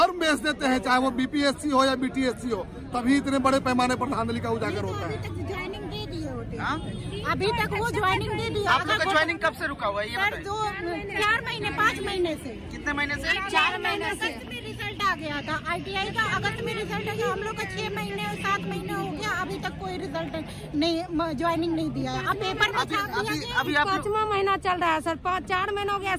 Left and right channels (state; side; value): identical; both; correlation 1.00